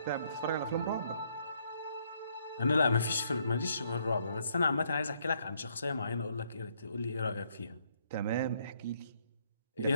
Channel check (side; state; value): both; inverted; correlation -0.70